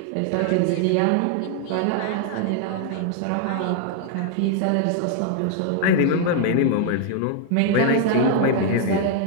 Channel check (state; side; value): different; both; correlation 0.00